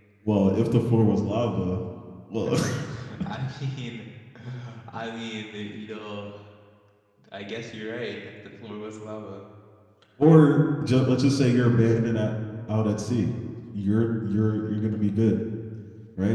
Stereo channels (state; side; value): identical; both; correlation 1.00